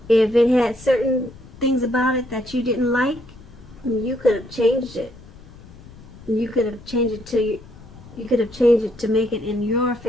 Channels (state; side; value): noise; left; rumble, 20 dB below the sound